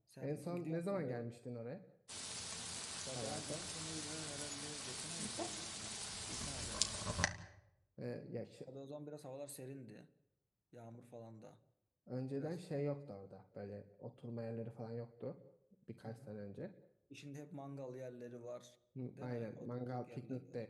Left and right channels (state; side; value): identical; both; correlation 1.00